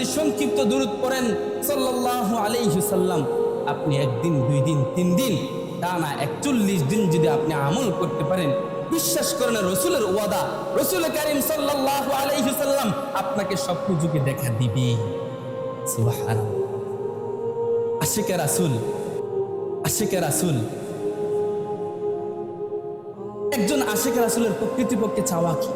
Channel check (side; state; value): both; identical; correlation 1.00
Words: সংক্ষিপ্ত দুরূদ পড়েন সাল্লাল্লাহু আলাইহি ওয়াসাল্লাম, আপনি একদিন, 2 দিন, 3 দিন, টানা 41 দিন যদি আপনি আমল করতে পারেন, বিশ্বাস করেন রসুলের ওয়াদা, রসুল কারীম সাল্লাল্লাহু আলাইহি ওয়াসাল্লাম আপনাকে স্বপ্ন যুগে দেখা দিবে। সুবহানাল্লাহ। আশিকে রাসূল, আশিকে রাসূল, একজন আশিকে রাসূলের প্রকৃতপক্ষে চাওয়া কি?